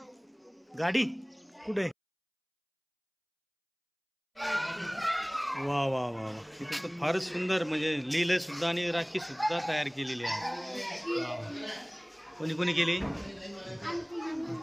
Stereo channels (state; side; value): identical; both; correlation 1.00